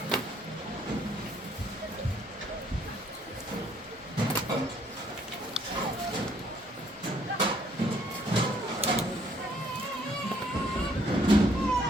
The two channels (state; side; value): normal; both; correlation 0.65